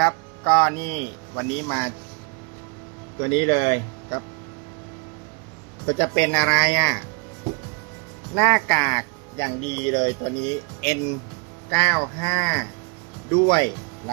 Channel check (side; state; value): left; quieter; 32.1 dB